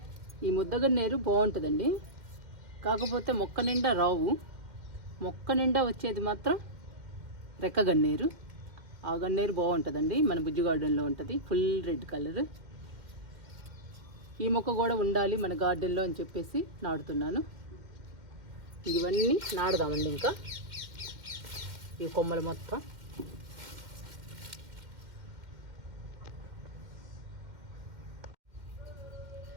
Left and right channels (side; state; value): left; late; 2.1 ms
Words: ఈ ముద్దగన్నేరు బాగుంటుందండి, కాకపోతే మొక్క నిండా రావు. మొక్క నిండా వచ్చేది మాత్రం రెక్క గన్నేరు. ఆ గన్నేరు బాగుంటుందండి, మన బుజ్జి గార్డెన్లో ఉంటుంది, ఫుల్ రెడ్ కలర్. ఈ మొక్క కూడా ఉండాలి మన గార్డెన్లో అని చెప్పేసి నాటుతున్నాను. ఇవన్నీ నాడదామండి. ఇంకా ఈ కొమ్మలు మొత్తం